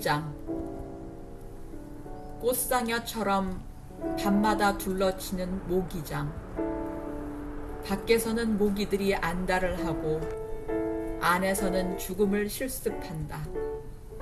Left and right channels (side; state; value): both; identical; correlation 1.00